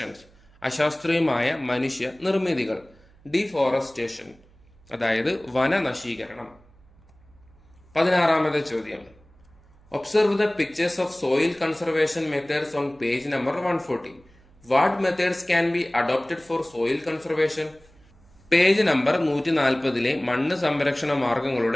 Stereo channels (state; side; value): noise; right; hum, 28 dB below the sound